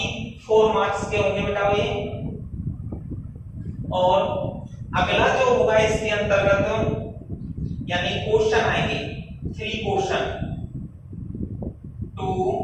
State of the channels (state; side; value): identical; both; correlation 1.00